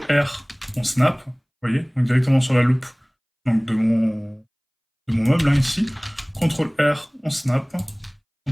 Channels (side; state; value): both; identical; correlation 1.00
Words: R, on snap, vous voyez, donc directement sur la loop donc de mon meuble, hein, ici. CTRL R, on snap,